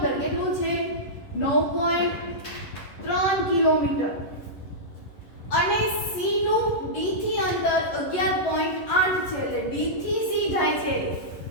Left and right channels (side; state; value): right; late; 11 ms